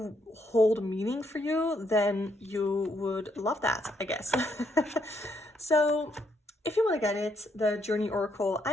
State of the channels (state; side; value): normal; both; correlation 0.74